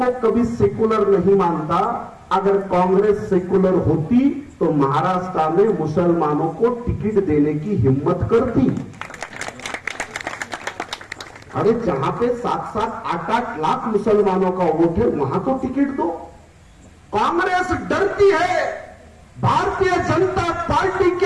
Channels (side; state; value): both; identical; correlation 1.00